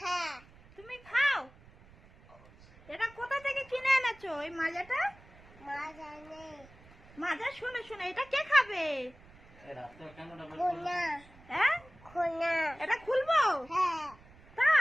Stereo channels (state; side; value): noise; right; rumble, 24 dB below the sound